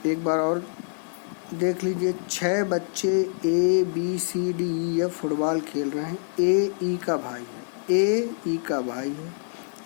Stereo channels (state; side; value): silent; right; digital silence